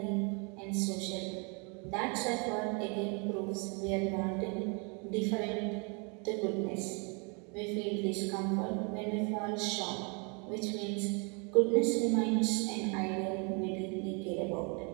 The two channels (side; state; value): left; quieter; 34.2 dB